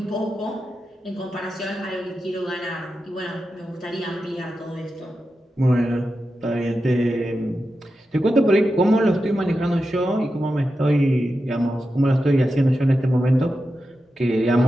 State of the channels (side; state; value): both; normal; correlation 0.90